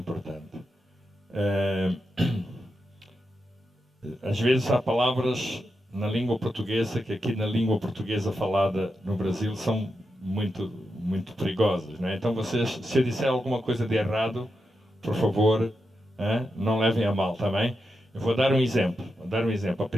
Às vezes há palavras na língua portuguesa, que aqui na língua portuguesa falada no Brasil são muito perigosas, não é? Então vocês, se eu disser alguma coisa de errado, por favor, não levem a mal, está bem? Eu vou dar um exemplo. A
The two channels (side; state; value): both; normal; correlation 0.87